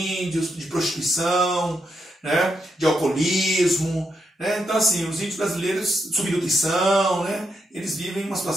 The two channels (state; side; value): normal; both; correlation 0.82